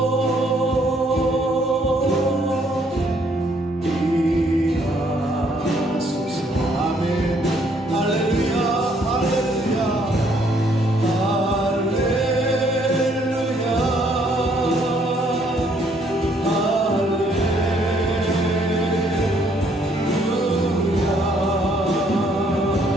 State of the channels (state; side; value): normal; both; correlation 0.67